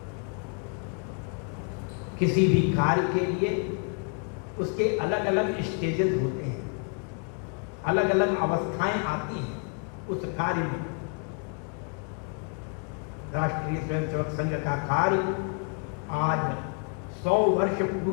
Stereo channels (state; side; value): quieter; right; 39.1 dB